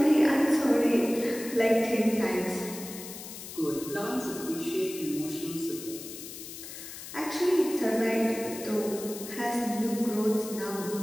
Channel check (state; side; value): noise; left; hiss, 12 dB below the sound